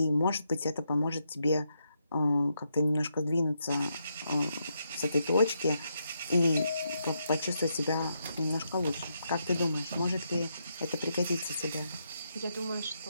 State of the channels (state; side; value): inverted; both; correlation -0.81